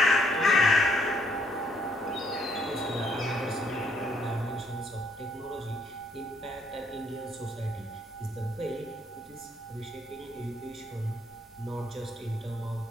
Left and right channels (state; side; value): normal; both; correlation 0.67